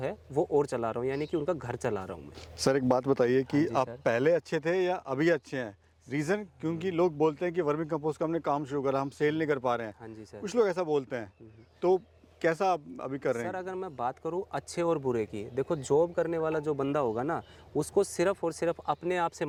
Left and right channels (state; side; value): identical; both; correlation 1.00